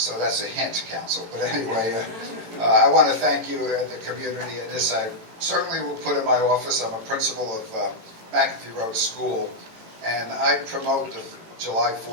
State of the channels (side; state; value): left; late; 18 ms